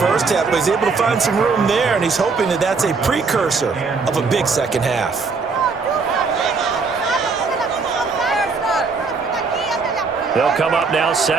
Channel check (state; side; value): quieter; left; 4.6 dB